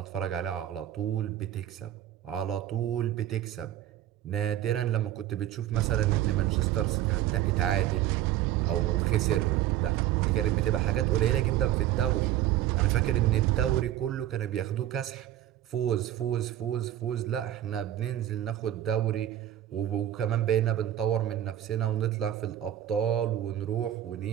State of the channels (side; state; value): left; quieter; 12.4 dB